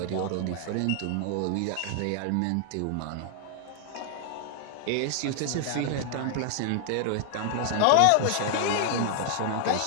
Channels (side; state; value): both; different; correlation 0.00